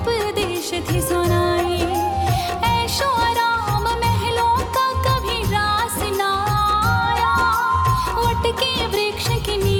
थे सुनाए। ऐशो आराम महलों का कभी रास ना आया। वट के वृक्ष के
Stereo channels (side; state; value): both; identical; correlation 1.00